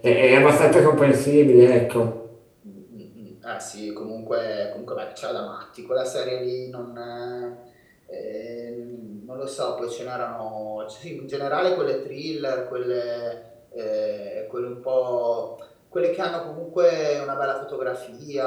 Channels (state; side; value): identical; both; correlation 1.00